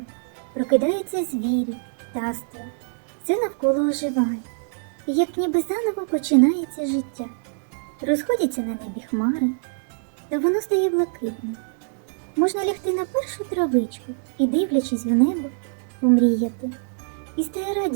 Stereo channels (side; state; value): left; silent; digital silence